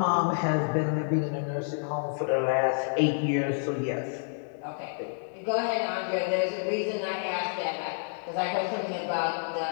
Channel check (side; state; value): right; silent; digital silence